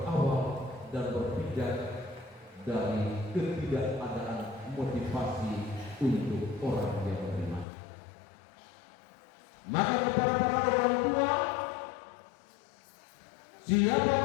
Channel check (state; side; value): drops out; right; at 7.7 s